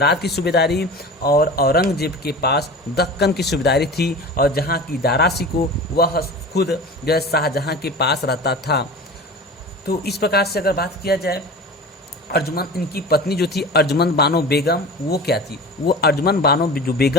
की सूबेदारी और औरंगजेब के पास दक्कन की सूबेदारी थी। और जहाँ की दारा शिकोह वह खुद जो है शाहजहां के पास रहता था। तो इस प्रकार से अगर बात किया जाए, अर्जुमन, इनकी पत्नी जो थी अर्जुमन बानो बेगम, वो क्या थी? वो अर्जुमन बानो जो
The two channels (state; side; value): normal; both; correlation 0.35